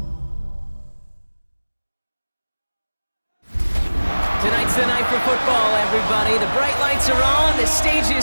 Tonight's the night for football, everybody. The bright lights are on, the stage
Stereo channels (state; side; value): inverted; both; correlation -1.00